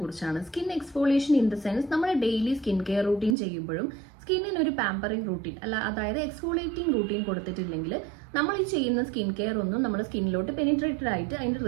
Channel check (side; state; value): left; drops out; at 3.4 s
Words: Skin exfoliation in the sense നമ്മൾ daily skin care routine ചെയ്യുമ്പോഴും സ്കിന്നിന് ഒരു പാമ്പറിംഗ് റൂട്ടീൻ അതായത് എക്സ്ഫോളിയേറ്റിംഗ് റൂട്ടീൻ കൊടുത്തിട്ടില്ലെങ്കിൽ നമ്മൾ ഈ ചെയ്യുന്ന സ്കിൻ കെയർ ഒന്നും നമ്മുടെ സ്കിന്നിലോട്ട് പെനിട്രേറ്റഡ് ആയിട്ട് അതിന്റെ